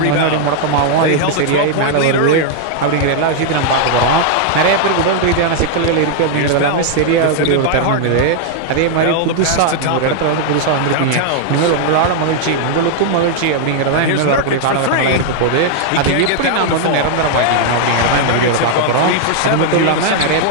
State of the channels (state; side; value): different; both; correlation -0.01